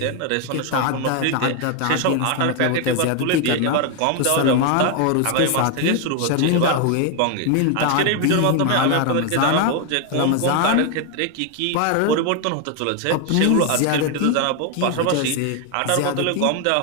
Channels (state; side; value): different; both; correlation 0.01